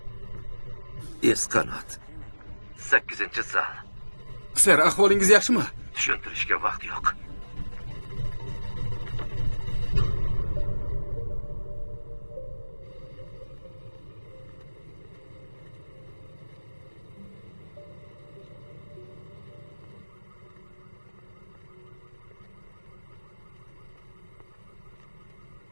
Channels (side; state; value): both; inverted; correlation -1.00